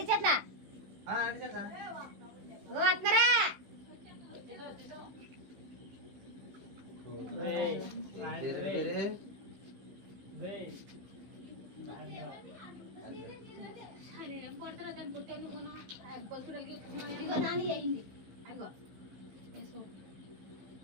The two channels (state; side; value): late; left; 16 ms